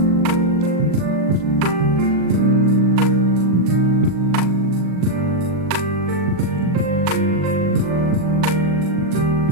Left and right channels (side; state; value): left; late; 40 ms